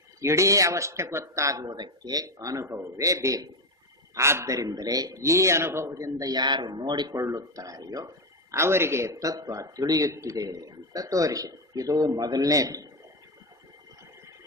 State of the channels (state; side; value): normal; both; correlation 0.12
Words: ಇಡೀ ಅವಸ್ಥೆ ಗೊತ್ತಾಗುವುದಕ್ಕೆ ಅನುಭವವೇ ಬೇಕು. ಆದ್ದರಿಂದಲೇ ಈ ಅನುಭವದಿಂದ ಯಾರು ನೋಡಿಕೊಳ್ಳುತ್ತಾರೆಯೋ ಅವರಿಗೆ ತತ್ವ ತಿಳಿಯುತ್ತಿದೆ ಅಂತ ತೋರಿಸಿದೆ. ಇದು ಮೊದಲನೇದು.